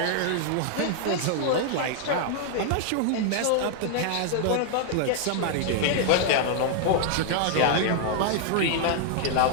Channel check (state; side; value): different; both; correlation 0.00